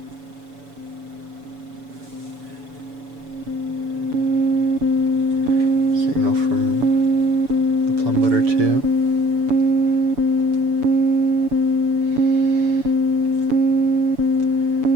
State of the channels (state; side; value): late; left; 7.0 ms